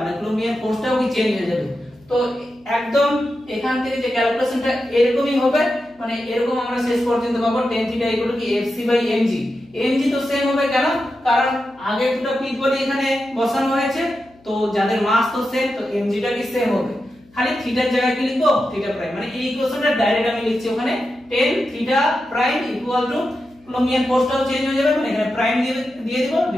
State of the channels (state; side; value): noise; left; hum, 29 dB below the sound